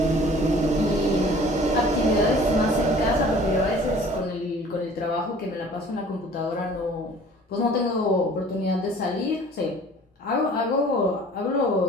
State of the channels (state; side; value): normal; both; correlation 0.49